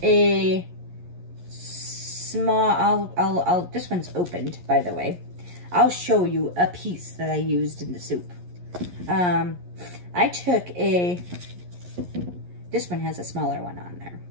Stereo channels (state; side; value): late; left; 11 ms